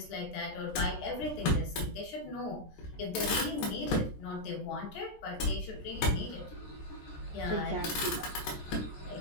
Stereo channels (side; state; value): right; late; 13 ms